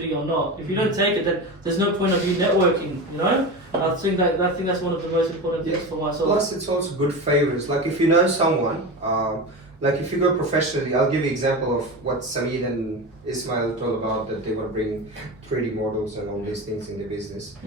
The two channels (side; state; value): both; normal; correlation 0.25